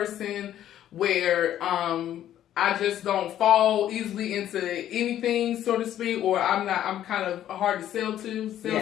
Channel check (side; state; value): right; quieter; 11.6 dB